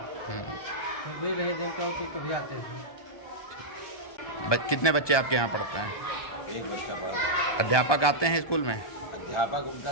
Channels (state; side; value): late; right; 1.2 ms